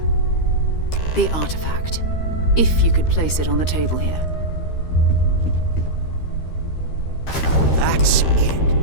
The artifact. If you could place it on the table here. That's it.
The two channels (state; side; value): late; right; 13 ms